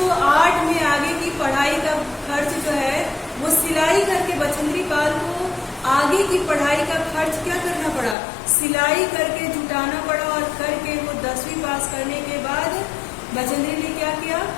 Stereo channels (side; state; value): right; drops out; at 8.2 s